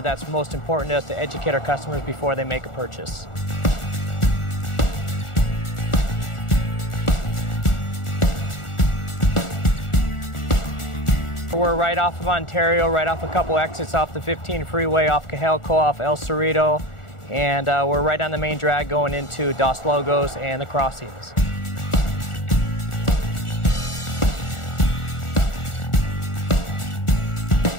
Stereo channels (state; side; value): late; right; 1.4 ms